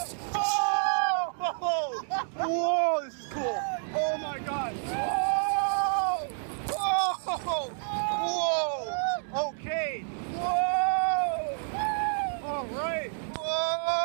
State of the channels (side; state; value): left; silent; digital silence